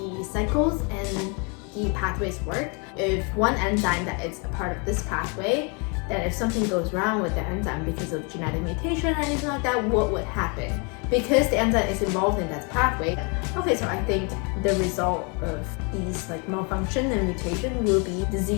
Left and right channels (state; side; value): quieter; right; 33.8 dB